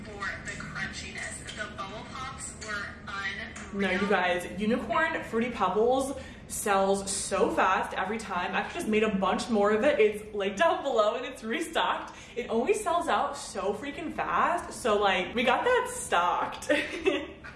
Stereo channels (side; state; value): both; identical; correlation 1.00